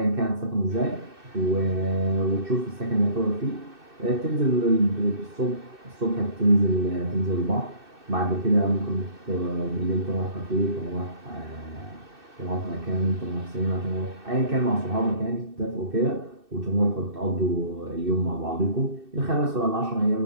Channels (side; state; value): left; late; 2.6 ms